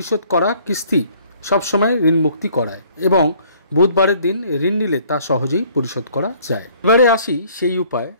করা কিস্তি সবসময় ঋণ মুক্তি করায় এবং বুধবারের দিন ঋণ নিলে তা সহজেই পরিশোধ করা যায়। এবারে আসি সেই উপায়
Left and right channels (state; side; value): inverted; both; correlation -0.59